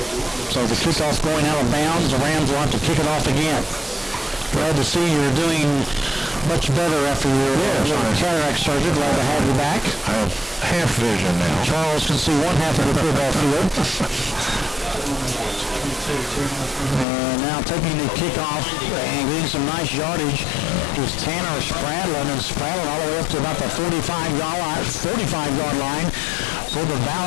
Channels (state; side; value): drops out; right; at 17.1 s